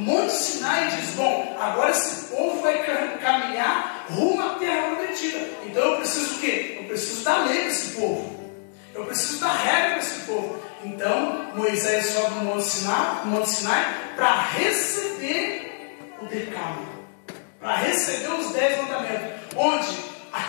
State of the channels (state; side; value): silent; right; digital silence